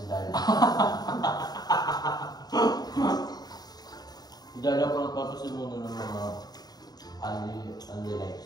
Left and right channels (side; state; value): right; late; 0.19 ms